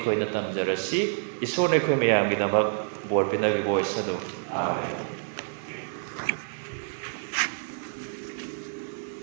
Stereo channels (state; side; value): silent; left; 56 dB below the other